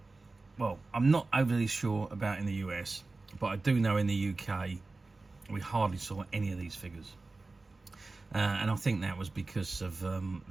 well, I'm not overly sure about in the US, but I do know in the UK we hardly saw any of these figures, and I think that was because of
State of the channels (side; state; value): left; quieter; 3.5 dB